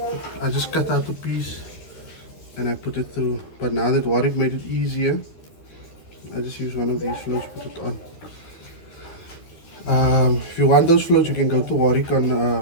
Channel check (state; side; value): late; right; 13 ms